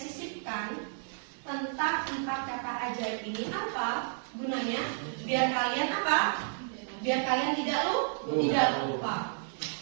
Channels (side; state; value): left; silent; 57 dB below the other